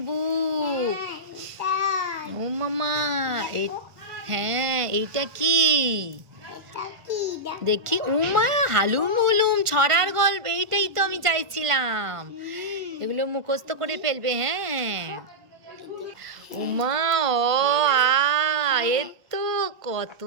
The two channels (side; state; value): left; late; 1.5 ms